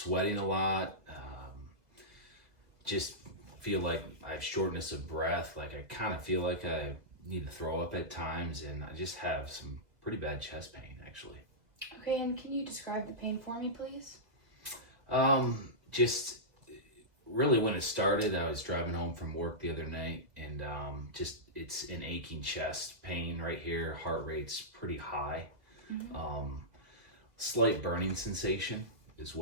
a lot. Just feel like I have shortness of breath. Like I kind of feel like I need to throw up at times, and I just have some pretty bad chest pain, actually. Okay, and can you describe the pain for me, please? Just really when it started, I was driving home from work the other night, and it's an aching chest pain right here. Heart rate's pretty high. Slight burning sensation as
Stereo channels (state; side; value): late; left; 2.0 ms